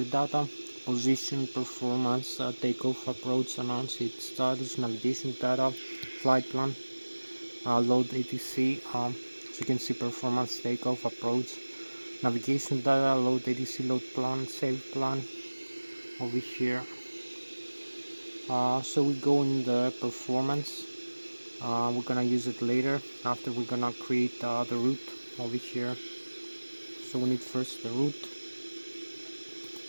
data: position, performance, takeoff, approach, announce its status, navigation data, flight plan. load ATC, so you can see performance, takeoff, approach, navigation data, load ATC, load plan, save plan over here. So we go in the performance. We're gonna use it later after we're gonna create the route over here. So we need first the route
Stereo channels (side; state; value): both; inverted; correlation -1.00